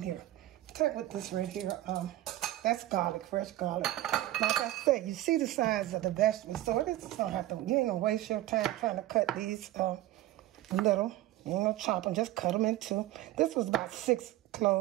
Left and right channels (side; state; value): left; quieter; 15.3 dB